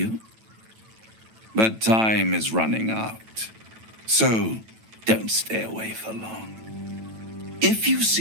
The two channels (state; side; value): late; left; 9.1 ms